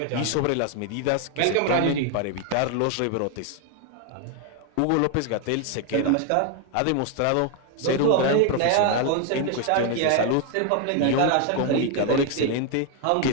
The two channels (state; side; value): different; both; correlation 0.00